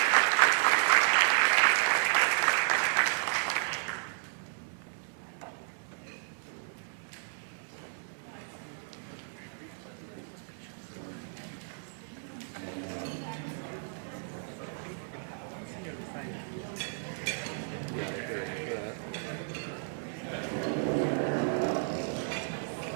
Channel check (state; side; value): silent; left; digital silence